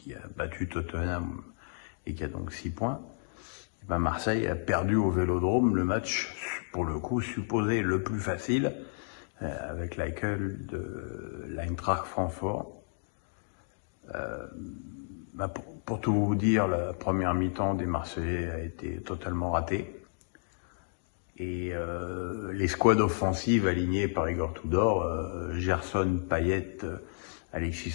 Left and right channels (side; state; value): right; silent; digital silence